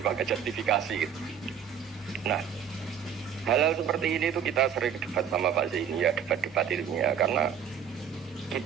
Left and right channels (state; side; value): quieter; left; 8.1 dB